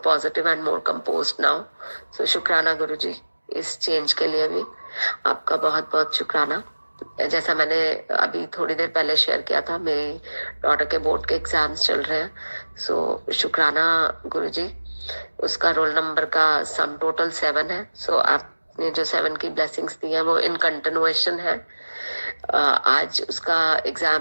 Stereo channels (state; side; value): inverted; both; correlation -1.00